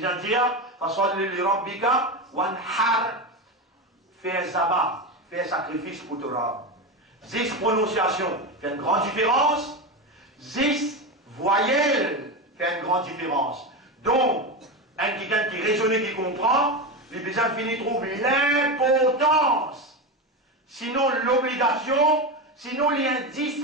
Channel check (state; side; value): normal; both; correlation 0.18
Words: de dire fasolli li rabbika wanhar, fais zabat, fais sacrifice pour ton rab. 10 prononciations fait une grande différence, 10 voyelles fait une grande différence. Donc, un quelqu'un qui raisonne et qui comprend, les besoins finis trouvent l'importance, sinon l'obligation, sinon